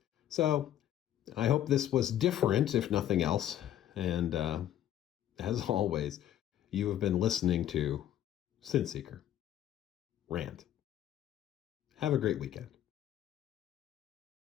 so I hope this was different, if nothing else. And as always, you have been listening to Synth Seeker Rant. Have a great weekend.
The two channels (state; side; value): quieter; right; 11.5 dB